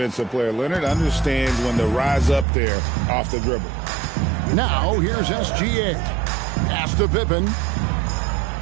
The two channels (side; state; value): left; drops out; at 2.5 s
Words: player. Leonard understands when to rise up there off the dribble. Now, here's SGA. Pass to Pippen.